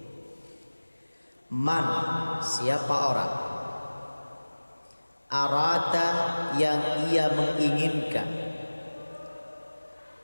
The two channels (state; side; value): inverted; both; correlation -1.00